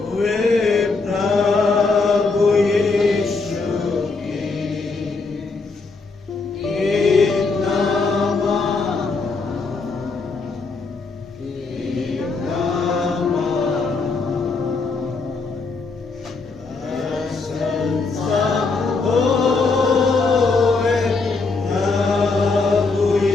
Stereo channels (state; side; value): quieter; right; 4.1 dB